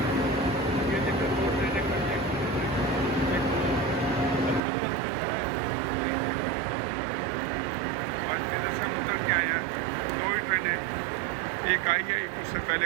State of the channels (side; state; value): left; drops out; at 4.6 s